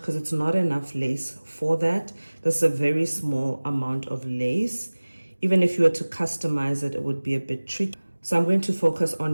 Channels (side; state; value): both; inverted; correlation -1.00